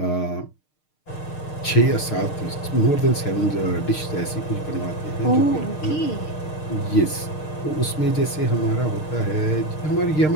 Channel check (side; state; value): right; late; 6.6 ms